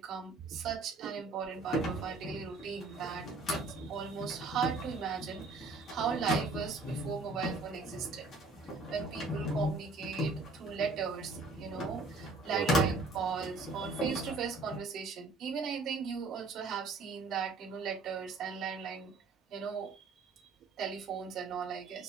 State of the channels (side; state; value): left; quieter; 3.5 dB